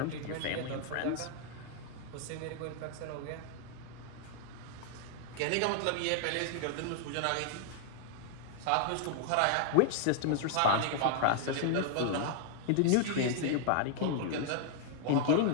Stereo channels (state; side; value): different; both; correlation 0.00